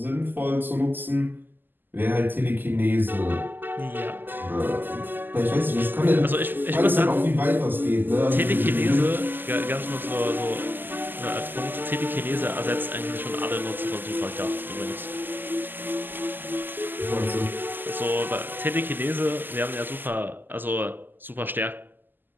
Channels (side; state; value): left; late; 0.091 ms